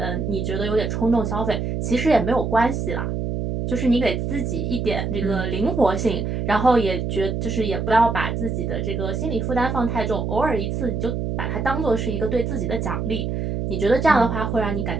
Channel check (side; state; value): right; noise; hum, 2 dB below the sound